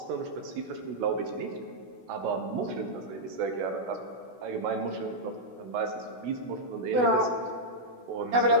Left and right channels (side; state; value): left; late; 16 ms